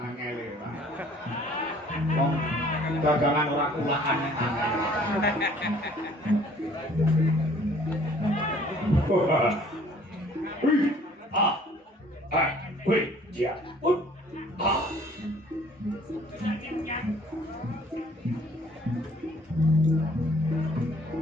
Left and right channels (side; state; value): both; normal; correlation 0.56